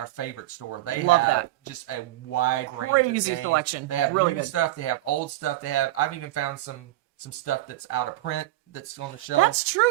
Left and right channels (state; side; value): quieter; left; 15.9 dB